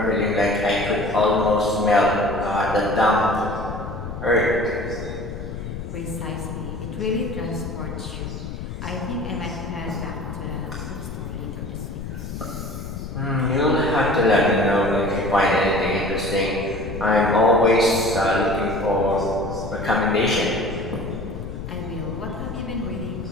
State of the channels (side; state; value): left; noise; rumble, 8 dB below the sound